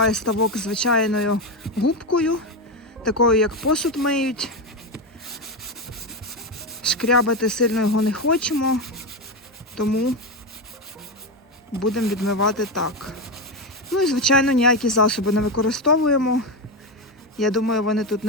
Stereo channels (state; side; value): normal; both; correlation 0.13